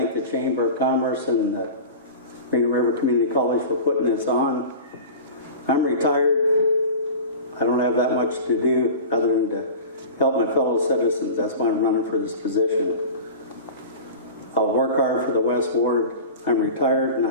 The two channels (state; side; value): inverted; both; correlation -0.34